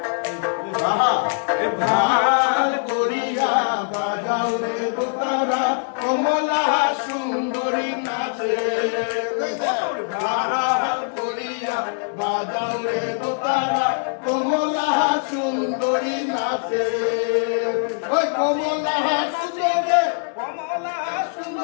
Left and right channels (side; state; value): right; silent; digital silence